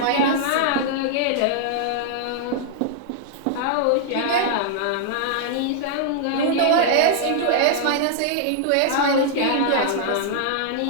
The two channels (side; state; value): both; different; correlation -0.01